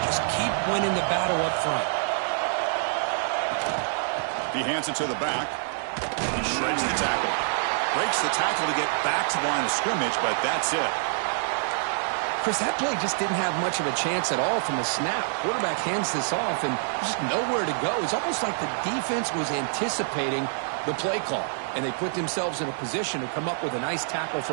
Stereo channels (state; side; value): silent; left; digital silence